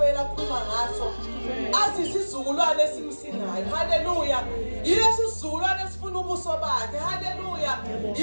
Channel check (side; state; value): both; inverted; correlation -1.00